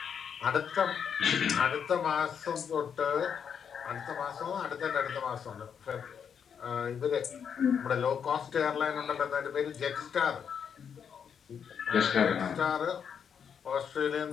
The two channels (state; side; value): quieter; right; 7.4 dB